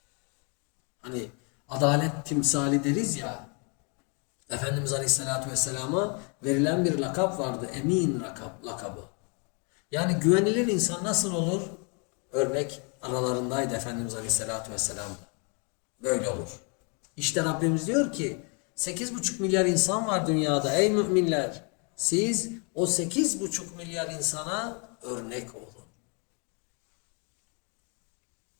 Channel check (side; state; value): right; quieter; 35.8 dB